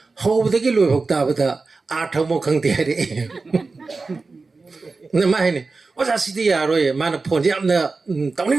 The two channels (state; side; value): quieter; left; 4.0 dB